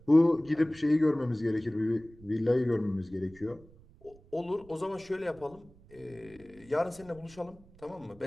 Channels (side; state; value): right; noise; rumble, 24 dB below the sound